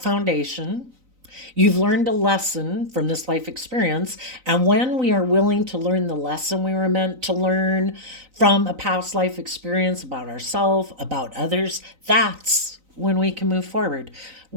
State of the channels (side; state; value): left; late; 3.9 ms